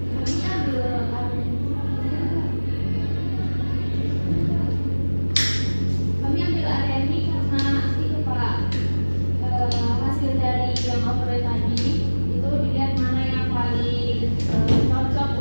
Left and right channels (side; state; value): both; inverted; correlation -1.00